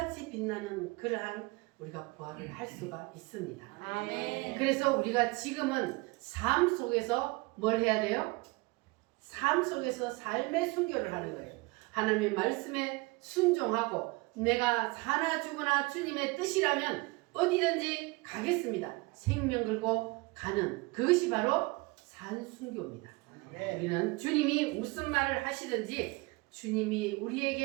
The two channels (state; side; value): quieter; left; 25.1 dB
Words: 빛나는 그러한 우리가 부활을 할 수가 있습니다. 그래서 우리가 지금은 삶 속에서 뭘 해야 돼요? 삶 속에서 삶의 순교를 하는 거예요. 하나님의 말씀에 순종하고 내가 사나 죽으나 주님의 뜻이라면 어디든지 가겠습니다. 생명 걸고 가는 그것이 바로 산순교입니다. 우리는 주님이 무슨 말을 하시든지 주님이